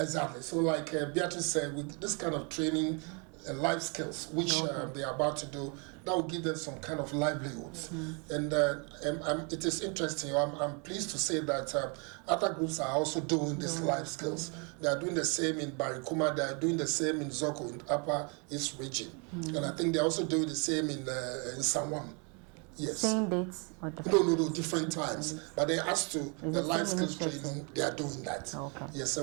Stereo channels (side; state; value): left; quieter; 34.7 dB